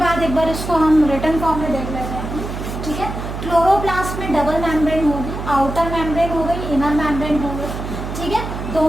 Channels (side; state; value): right; noise; hum, 6 dB below the sound